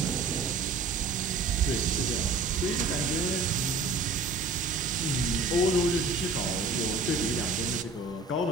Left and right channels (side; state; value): left; quieter; 3.8 dB